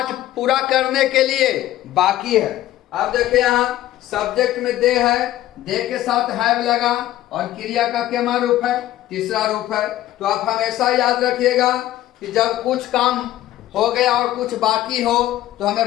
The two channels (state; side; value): quieter; right; 14.2 dB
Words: पूरा करने के लिए बाकी है। अब देखिए यहाँ सब्जेक्ट में दे है, दे के साथ हैव लगा और क्रिया का क्या रूप है? तीसरा रूप है। तो आप हमेशा याद रखिएगा कि जब कुछ काम हो गया और कुछ बाकी हो तो